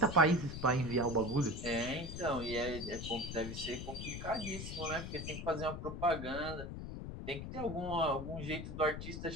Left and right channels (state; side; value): noise; left; rumble, 7 dB below the sound